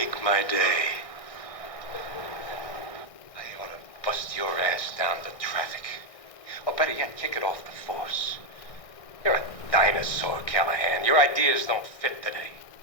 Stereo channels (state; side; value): late; right; 1.6 ms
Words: my day. I ought to bust your ass down to traffic. Or better yet, kick it off the force. You're a dinosaur, Callahan. Your ideas don't fit today.